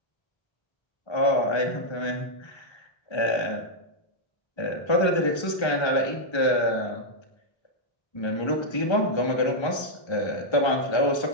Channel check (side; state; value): right; late; 1.3 ms